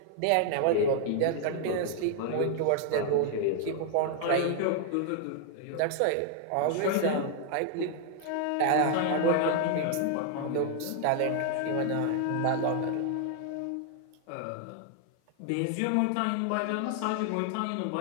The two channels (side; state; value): both; different; correlation 0.00